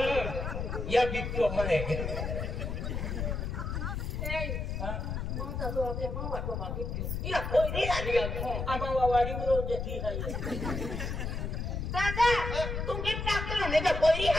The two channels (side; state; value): left; noise; rumble, 3 dB below the sound